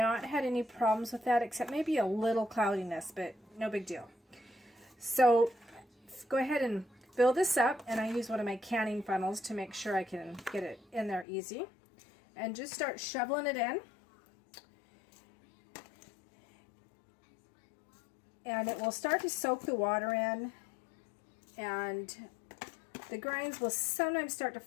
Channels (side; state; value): right; drops out; at 11.2 s